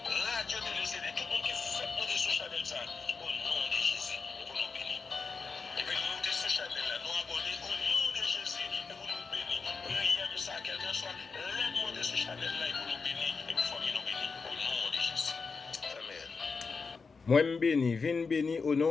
radio télé CD, tout le monde qui fait monter sur Chanel ça, au nom de Jésus, pour nous bénir. Et puis nous monter sur Chanel là, nous abonner au nom de Jésus, et pour nous bénir. Priez de ça, quelqu'un soit, l'aide monter sur Chanel là, et pour nous bénir, et pour famille nous bénir, au nom de Jésus. Amen. Moi, je bénis, viens béni au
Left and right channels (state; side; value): quieter; right; 4.8 dB